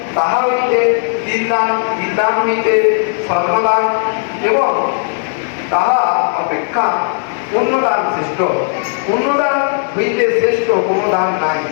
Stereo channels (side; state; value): right; silent; 61 dB below the other